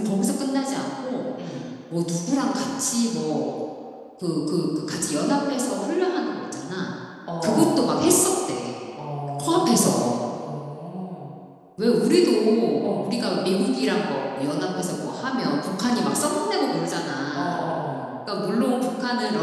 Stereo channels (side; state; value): both; identical; correlation 1.00